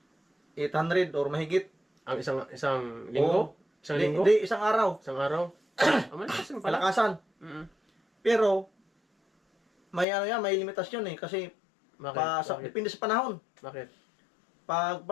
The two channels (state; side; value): drops out; right; at 10.1 s